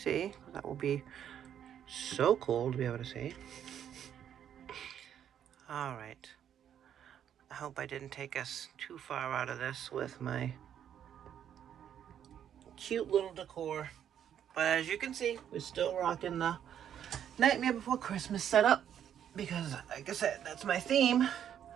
that will be so cool to be able to see. Alright. I hope I didn't take us too far out of this with my cute little decor. But as you can see, we're still rocking the Nightmare Before Christmas setup because, like I said, that's my theme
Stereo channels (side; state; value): left; quieter; 9.5 dB